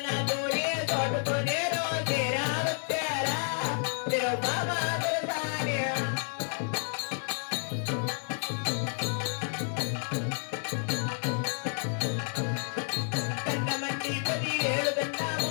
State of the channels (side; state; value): right; silent; 58 dB below the other